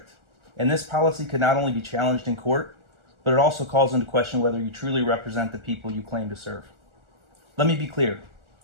and this policy could not only be challenged in court, but it also calls into question whether you truly represent the people you claim to serve. Let me be clear.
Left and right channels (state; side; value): late; left; 1.4 ms